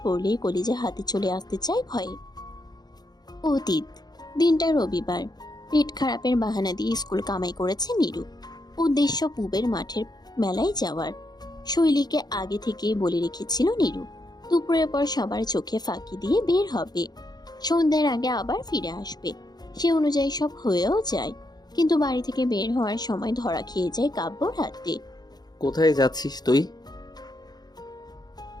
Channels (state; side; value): late; right; 0.19 ms